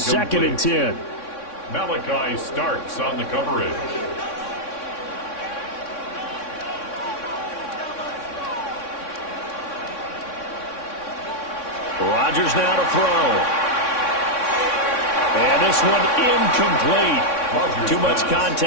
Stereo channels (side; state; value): right; late; 3.6 ms